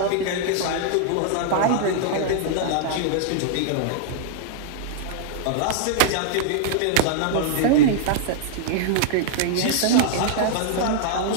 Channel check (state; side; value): different; both; correlation -0.01